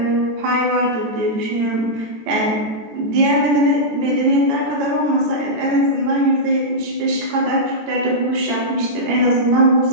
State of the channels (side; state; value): left; late; 14 ms